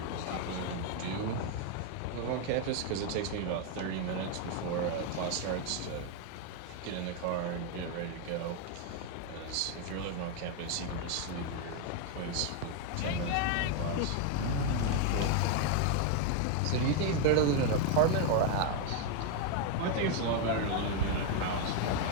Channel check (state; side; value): different; both; correlation 0.01